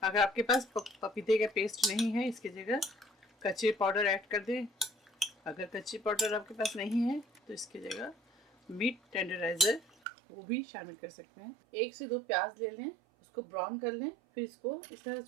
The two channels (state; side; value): drops out; left; at 10.0 s